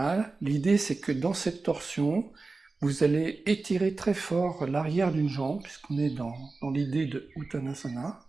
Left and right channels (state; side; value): quieter; left; 3.7 dB